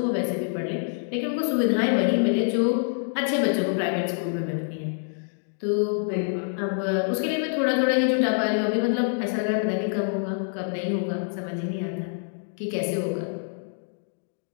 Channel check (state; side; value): silent; right; digital silence